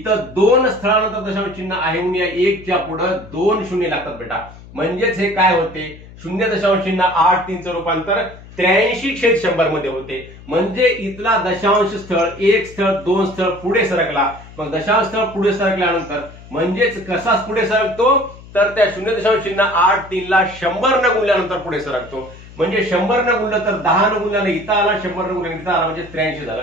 दोन स्थळानंतर दशांश चिन्ह आहे म्हणून या एकच्या पुढं 2 शून्य लागतात बेटा. म्हणजेच हे काय होते 0.8 रूपांतर 83/100 मध्ये होते. म्हणजे इथला दशांश स्थळ एक स्थळ दोन स्थळ पुढे सरकला. मग दशांश स्थळ पुढे सरकल्यानंतर म्हणजेच कसा पुढे सरकतो तर त्या 0.83 ला 100 न गुणल्यानंतर पुढे सरकतो. म्हणजे 100 न गुणलं तर 10 न गुणल्याने इथं आला, 100 न गुणल्याने इथं आला म्हणजे 83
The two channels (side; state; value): left; noise; hum, 19 dB below the sound